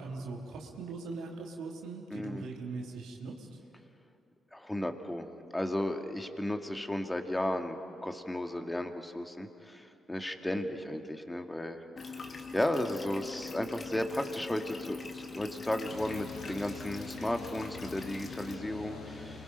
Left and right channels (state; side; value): normal; both; correlation 0.93